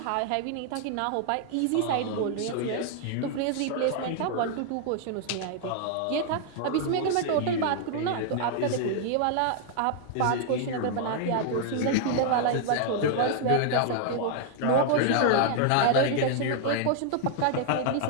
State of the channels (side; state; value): both; different; correlation 0.00